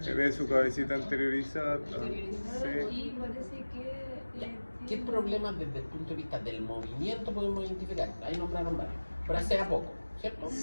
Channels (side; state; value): both; inverted; correlation -1.00